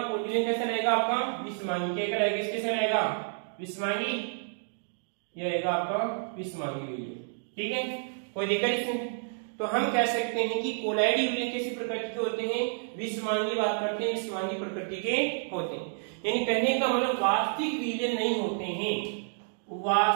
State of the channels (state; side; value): silent; left; digital silence